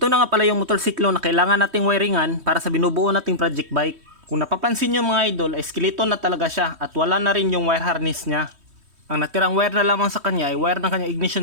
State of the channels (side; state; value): left; late; 3.1 ms